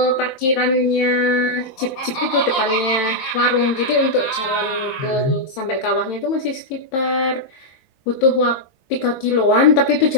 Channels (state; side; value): late; right; 22 ms